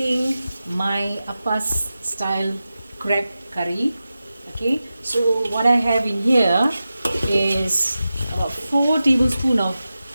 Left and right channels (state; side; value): inverted; both; correlation -0.93